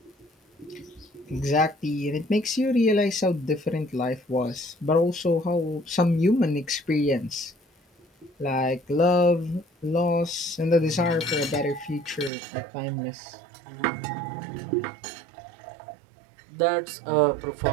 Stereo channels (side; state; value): left; drops out; at 12.3 s